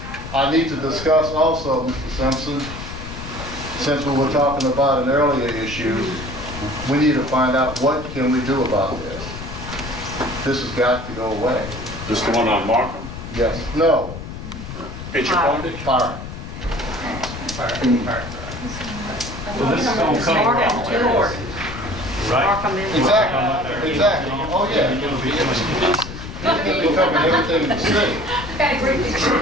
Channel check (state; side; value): noise; left; rumble, 10 dB below the sound